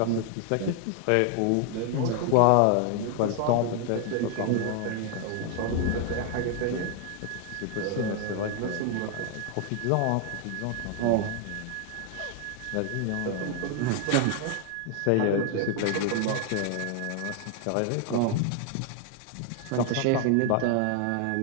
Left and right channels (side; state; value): both; different; correlation 0.00